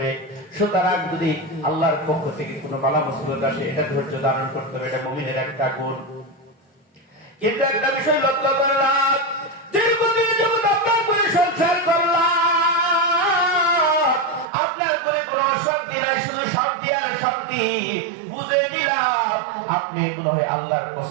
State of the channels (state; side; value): drops out; left; at 14.5 s